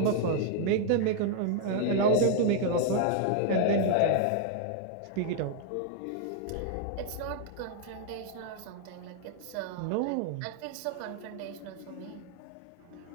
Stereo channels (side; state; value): both; different; correlation 0.00